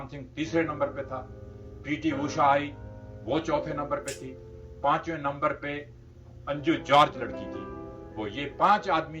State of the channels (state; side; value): identical; both; correlation 1.00